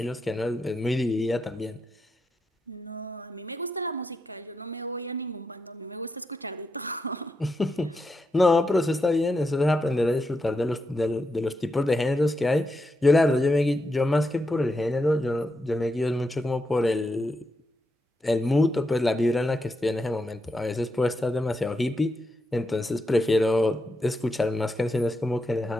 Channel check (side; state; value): both; normal; correlation 0.85